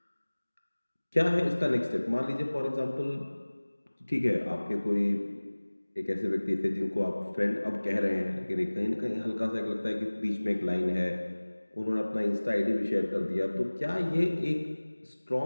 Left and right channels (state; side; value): inverted; both; correlation -1.00